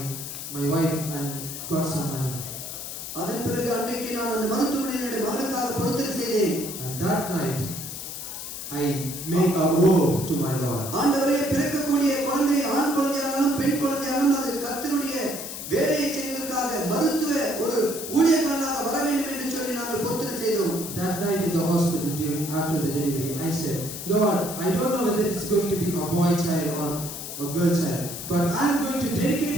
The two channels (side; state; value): left; noise; hiss, 8 dB below the sound